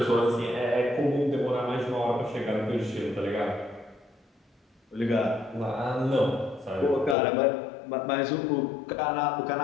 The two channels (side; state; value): right; drops out; at 7.2 s